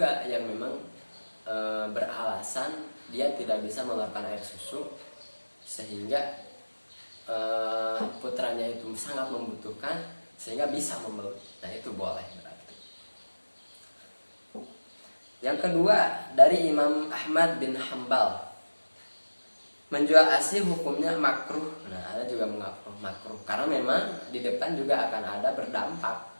yang memang beralasan dia tidak bisa mengeluarkan air susu sehingga putranya itu sangat membutuhkan sehingga bisa membeli. Nah, itu boleh berarti. Yang kedua, dari Imam Ahmad bin Hambal, menjual ASI hukumnya makruh. Nah, ada juga makruh karena memang di depan juga akan ada berdampak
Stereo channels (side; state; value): both; inverted; correlation -1.00